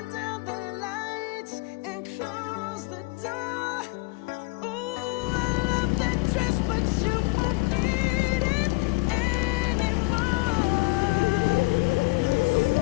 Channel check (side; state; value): right; quieter; 24.6 dB